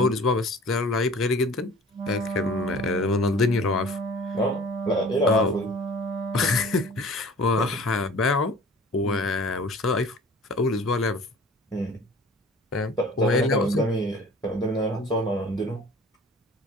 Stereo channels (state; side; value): normal; both; correlation 0.46